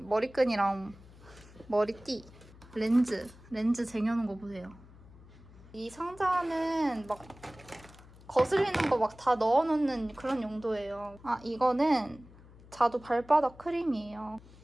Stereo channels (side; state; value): left; noise; hum, 22 dB below the sound